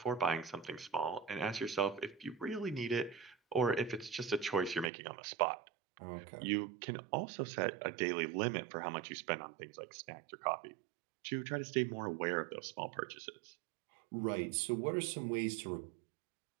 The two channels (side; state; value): left; drops out; at 4.9 s